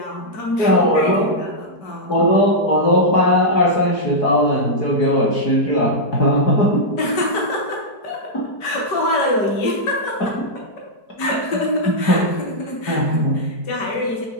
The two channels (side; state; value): right; late; 4.7 ms